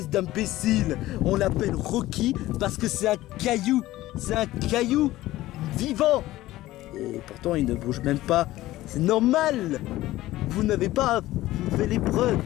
d'imbécile. On l'appelle Rocky parce que c'est un caillou. C'est un caillou vivant. Et pourtant, il ne bouge même pas. C'est normal. Vous n'avez pas fait l'épreuve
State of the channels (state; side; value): quieter; right; 16.3 dB